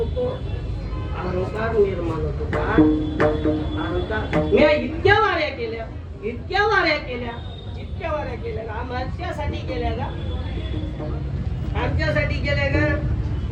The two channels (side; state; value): both; identical; correlation 1.00